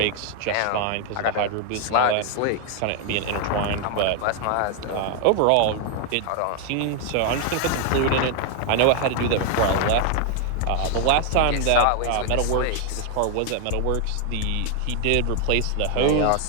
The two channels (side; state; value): both; different; correlation 0.00